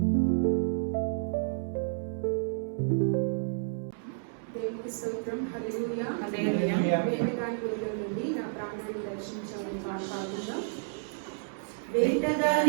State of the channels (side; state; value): left; silent; digital silence